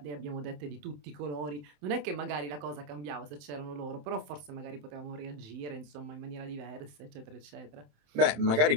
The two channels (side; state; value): left; late; 27 ms